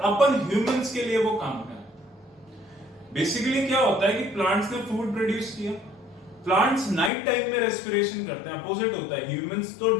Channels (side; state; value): right; drops out; at 7.1 s